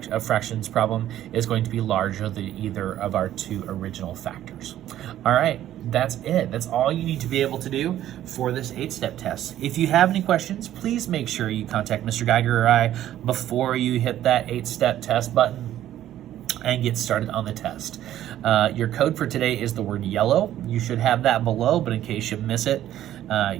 of fractions problem is going to be larger than either of our two original factors. All right, that's it. That's all you need to be able to do for this 8-step test. If you have any questions, please make sure you contact Mr. Geiger or I before you hit that 8-step test button and get started on the test. Your code for today is the word yellow. You should have that below, but in case you miss it,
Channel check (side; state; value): left; quieter; 12.4 dB